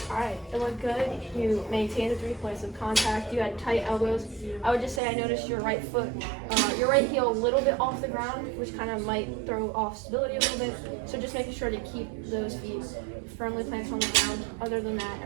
Alright, it looked good. You maintained the 3 points of contact. You had tight elbows. I would just say I noticed your right foot, your right heel a little bit off the ground, which kind of might throw off stability a little bit. So just making sure to keep those feet firmly planted on the ground. Other than that,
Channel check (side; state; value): left; drops out; at 5.0 s